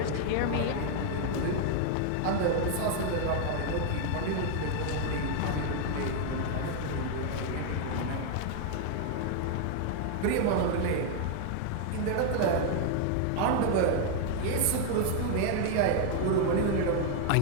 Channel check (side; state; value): both; different; correlation 0.00